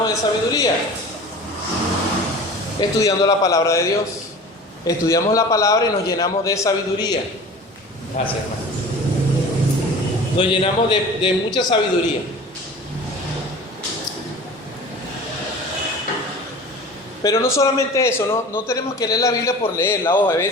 de sabiduría? Estudiando la palabra de Dios. Estudiamos la palabra y nos llenamos de sabiduría. Gracias, hermano. Nos llenamos de mucha sabiduría. Pero no solamente eso, no tenemos que leer la Biblia por leerla. Ojo, a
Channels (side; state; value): both; normal; correlation 0.39